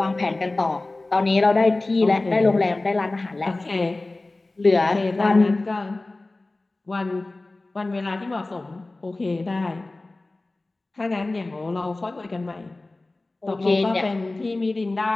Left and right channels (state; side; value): quieter; right; 3.0 dB